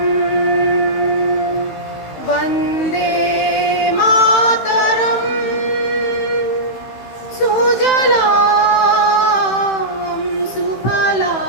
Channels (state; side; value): late; right; 15 ms